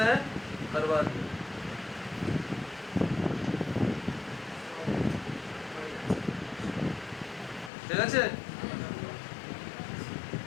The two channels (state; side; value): drops out; right; at 7.7 s